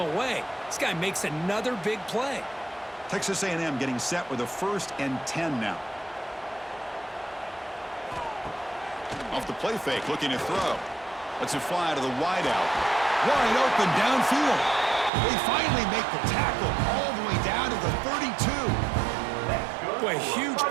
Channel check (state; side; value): drops out; left; at 15.1 s